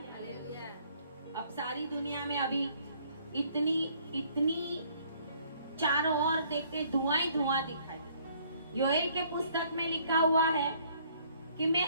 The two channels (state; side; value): inverted; both; correlation -0.62